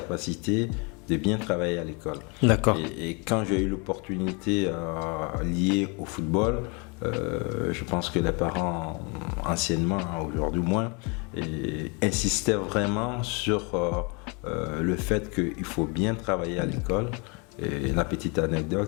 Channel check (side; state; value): right; quieter; 32.1 dB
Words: de bien travailler à l'école. D'accord. Et quand j'ai eu l'opportunité liée au football, je pense que les parents, anciennement, aujourd'hui moins, insistaient vraiment sur le fait qu'il faut bien travailler à l'école. Et la petite